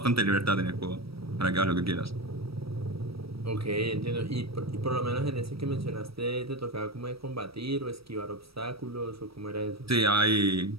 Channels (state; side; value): late; left; 0.76 ms